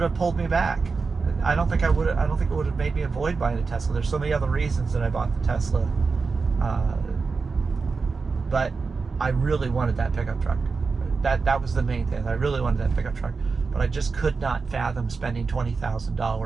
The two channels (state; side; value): quieter; left; 4.6 dB